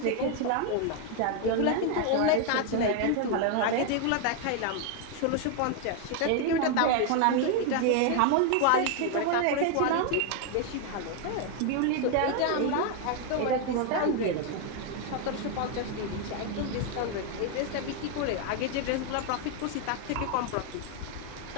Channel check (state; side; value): different; both; correlation 0.01